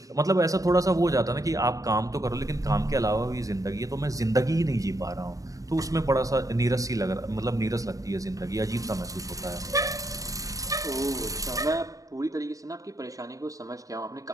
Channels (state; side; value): late; left; 0.16 ms